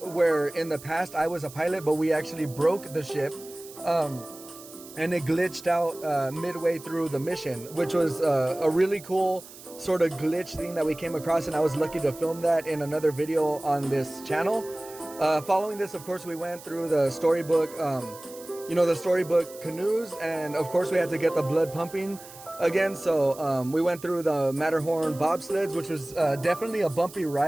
where in the past I was a pilot, but we actually broke the ship. And it glitched out midway through the mission, which was a really cool sort of glitch thing that we came across, and I was lucky to film that in another video on this channel. Following this, of course, we went through the storybook, the storybook canoes, and of course we had to get the blood pumping again. So we went through the Matterhorn bobsleds, which was definitely a bumpy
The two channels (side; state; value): right; noise; hiss, 18 dB below the sound